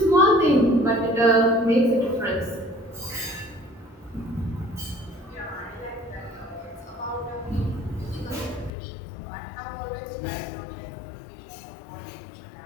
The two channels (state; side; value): drops out; right; at 8.7 s